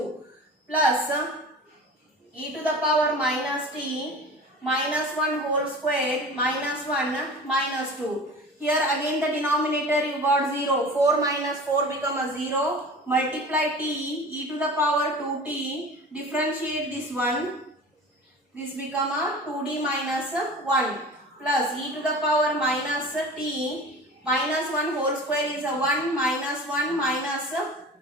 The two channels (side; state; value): both; normal; correlation 0.37